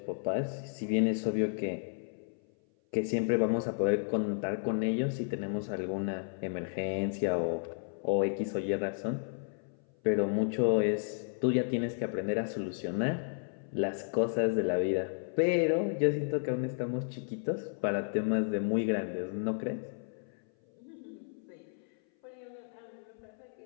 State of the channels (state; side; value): silent; right; 56 dB below the other